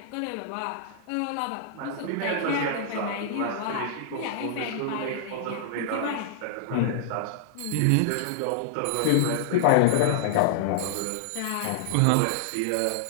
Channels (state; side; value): different; both; correlation -0.01